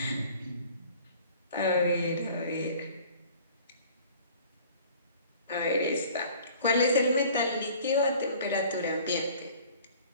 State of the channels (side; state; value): both; inverted; correlation -0.49